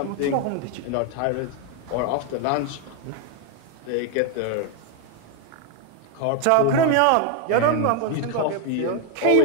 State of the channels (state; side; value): different; both; correlation 0.01